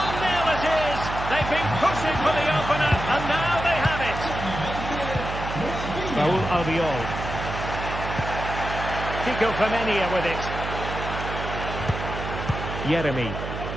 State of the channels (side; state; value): right; noise; hum, 6 dB below the sound